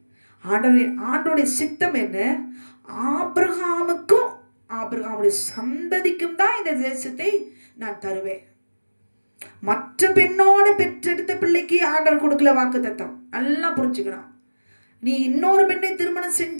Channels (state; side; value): inverted; both; correlation -1.00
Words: ஆண்டவருடைய சித்தம் என்ன? ஆபிரகாமுக்கும் ஆபிரகாமுடைய சந்ததிக்கும் தான் இந்த தேசத்தை நான் தருவேன். மற்ற பெண்ணோட பெற்றெடுத்த பிள்ளைக்கு ஆண்டவர் கொடுக்கல வாக்குத்தத்தம். நல்லா புரிஞ்சுக்கணும். நீ இன்னொரு பெண்ணை திருமணம்